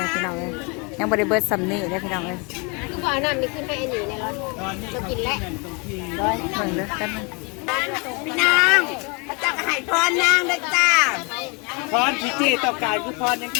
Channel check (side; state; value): right; quieter; 30.5 dB